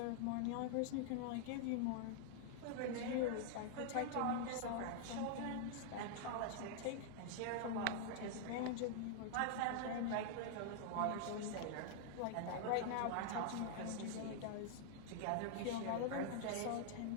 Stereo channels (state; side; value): different; both; correlation 0.00